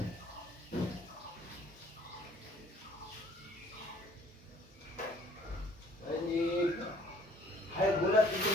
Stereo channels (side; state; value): both; normal; correlation 0.57